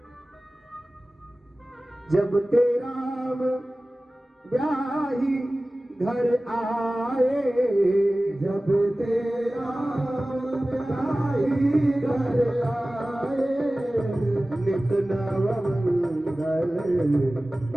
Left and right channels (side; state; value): both; normal; correlation 0.97